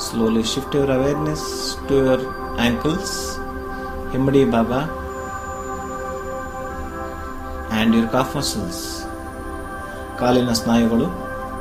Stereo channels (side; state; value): both; identical; correlation 1.00